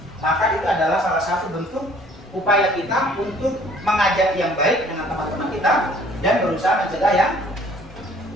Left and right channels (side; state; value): both; normal; correlation 0.56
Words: maka itu adalah salah satu bentuk upaya kita untuk mengajak yang baik dengan teman-teman kita dan berusaha mencegah yang